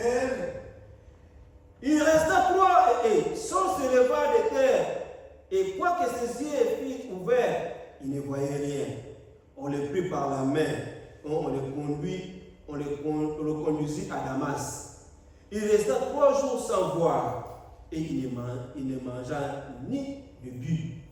Il resta 3 et sans se lever de terre. Et quoique ses yeux fussent ouverts, il ne voyait rien. On le prit par la main. On le conduisit à Damas. Il resta 3 jours sans voir. Et il ne mangea ni ne but.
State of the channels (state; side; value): identical; both; correlation 1.00